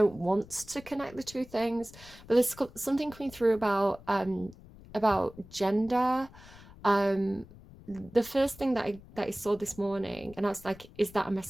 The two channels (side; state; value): left; noise; rumble, 20 dB below the sound